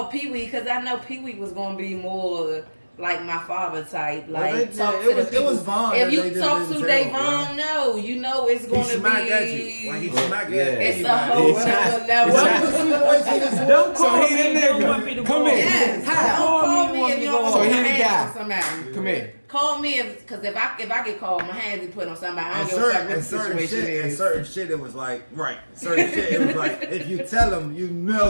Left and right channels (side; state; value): both; inverted; correlation -1.00